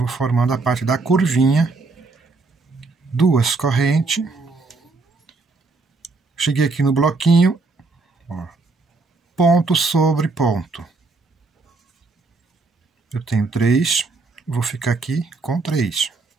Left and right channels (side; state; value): left; quieter; 3.8 dB